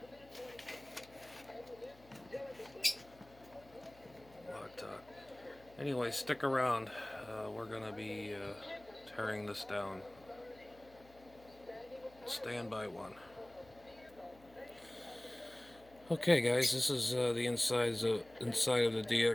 But anyway, stick around. We're gonna be tearing this down. Stand by one. Okay, guys, this is the inside of the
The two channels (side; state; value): left; noise; hum, 25 dB below the sound